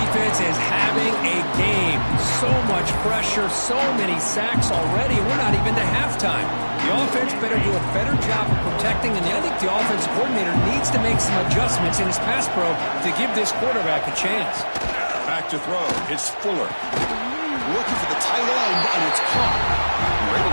is having a game. So much pressure, so many sacks already, and we're not even to halftime. The offense better do a better job of protecting, and I think the offensive coordinator needs to make some adjustments in his pass pro to give this quarterback a chance. Back to throw. It's Fuller. Looking for the tight end, and it's caught. We're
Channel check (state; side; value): inverted; both; correlation -1.00